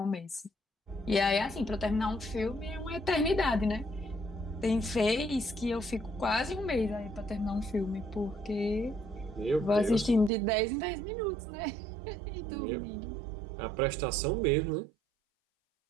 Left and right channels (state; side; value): drops out; left; at 10.3 s